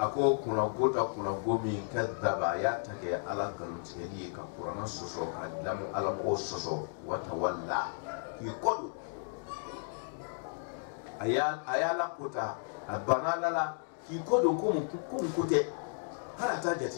ko kunnago ta kunnago min kadaba a y'a ta kɛ ala nkalontigɛli ye ka kuranna sɔsɔ ka dilamu ala mɔgɔw sɔsɔ wa tawalla k'i kɔ don a y'a lakota a banna ala la k'i kɔ don ko mun ko tɛ hali a t'a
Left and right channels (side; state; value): right; silent; digital silence